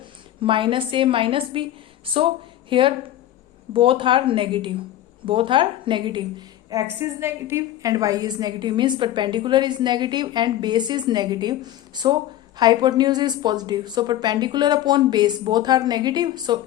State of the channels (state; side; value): quieter; right; 13.0 dB